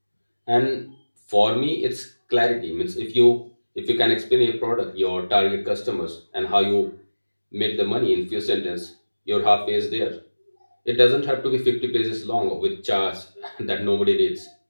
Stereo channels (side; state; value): both; inverted; correlation -1.00